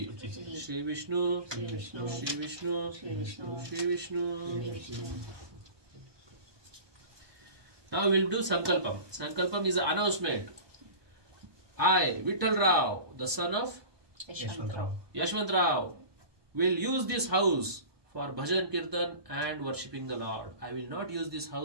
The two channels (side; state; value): left; late; 1.2 ms